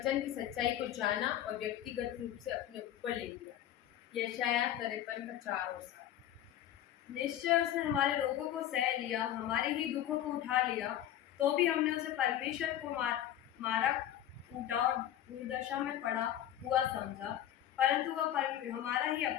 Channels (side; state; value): right; quieter; 11.7 dB